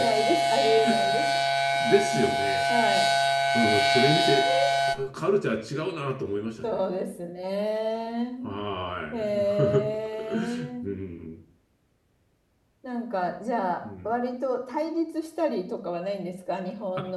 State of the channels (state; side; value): identical; both; correlation 1.00